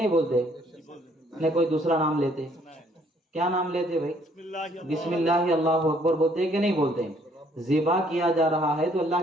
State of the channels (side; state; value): both; normal; correlation 0.64